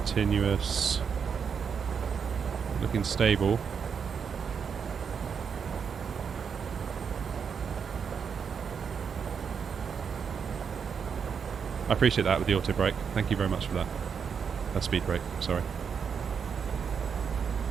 Looking stable. I appreciate that with the auto brake. Thank you very much for that. Speed brake, sorry.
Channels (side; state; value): left; quieter; 6.6 dB